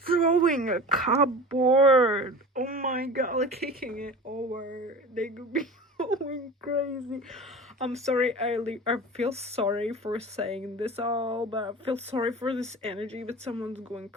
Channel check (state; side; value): normal; both; correlation 0.35